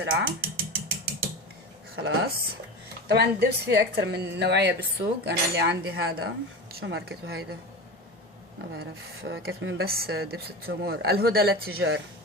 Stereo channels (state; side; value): normal; both; correlation 0.27